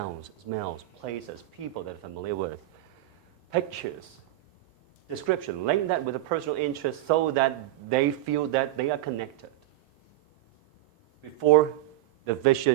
smells, places, people that are familiar with it, pictures, description, link that with a personal interest so that they feel that they are connected before the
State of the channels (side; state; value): left; quieter; 15.6 dB